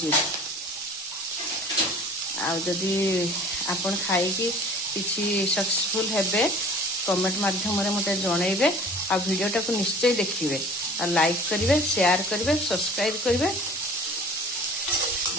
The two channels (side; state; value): both; normal; correlation 0.46